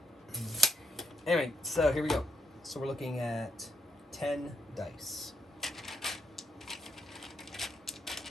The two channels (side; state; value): both; normal; correlation 0.77